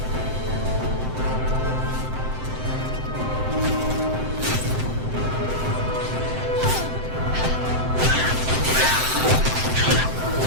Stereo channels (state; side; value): late; left; 7.8 ms